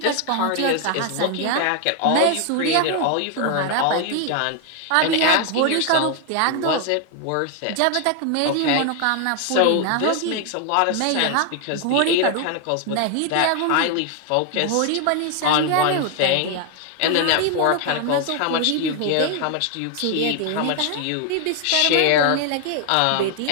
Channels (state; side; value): different; both; correlation 0.00